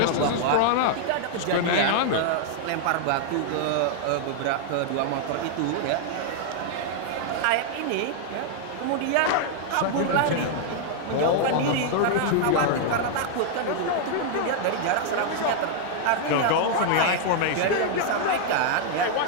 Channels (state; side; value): different; both; correlation 0.00